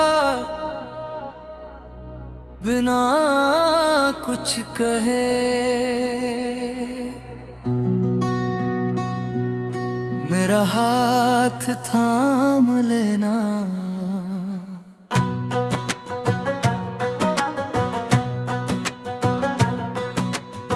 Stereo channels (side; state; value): both; identical; correlation 1.00